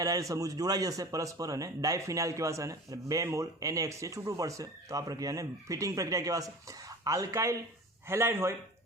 એરાઇલ સમૂહ જોડાઈ જશે પરસ્પર અને ડાયફિનાઇલ કહેવાશે અને 2 મોલ NaX છે છૂટું પડશે. તો આ પ્રક્રિયાને ફિટિંગ પ્રક્રિયા કહેવાશે. આલ્કાઇલ હેલાઇડ હોય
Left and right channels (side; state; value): both; normal; correlation 0.36